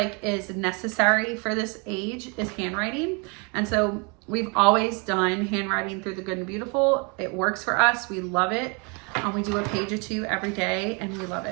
is necessary for this age is handwriting. And so we've always done handwriting through the Good and Beautiful. It works for us. We love it. We do a page or 2 every day and we love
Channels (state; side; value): quieter; left; 32.6 dB